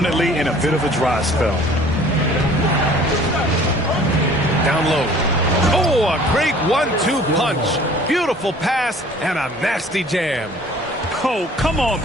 in a bit of a dry spell. Down low. Oh, a great 1-2 punch. Beautiful pass and a nasty jam. Oh, come on,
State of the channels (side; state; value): both; normal; correlation 0.51